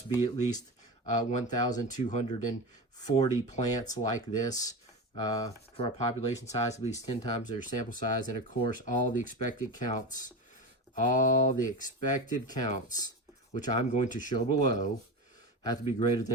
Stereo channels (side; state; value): both; normal; correlation 0.23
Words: be at least 1,240 plants like this for our population size, at least 10 times their sample size. And of course, all the expected counts, which I'm going to show below, have to be greater